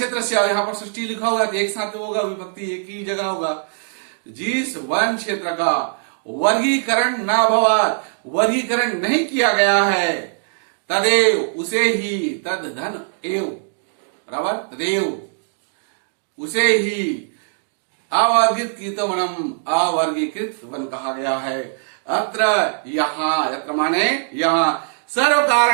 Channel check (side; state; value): left; silent; digital silence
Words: से, यहाँ पर सृष्टि लिखा हुआ है, एक साथ होगा, विभक्ति एक ही जगह होगा, जिस वन क्षेत्र का वर्गीकरण न भवात, वर्गीकरण नहीं किया गया है, तदेव, उसे ही, तद धन एव, बराबर, तदेव उसे ही अवर्गीकृत वनम, अवर्गीकृत वन कहा गया है। अत्र, यहाँ, अत्र माने यहाँ, सर्व